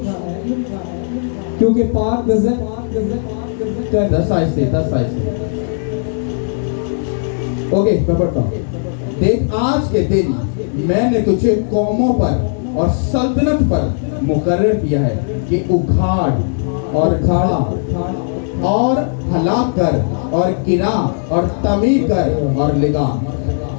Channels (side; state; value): right; silent; 68 dB below the other